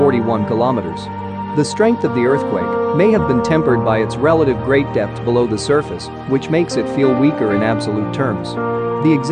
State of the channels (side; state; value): both; identical; correlation 1.00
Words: kilometers. The strength of the earthquake may have been tempered by its relative great depth below the surface, which makes it feel weaker in absolute terms. The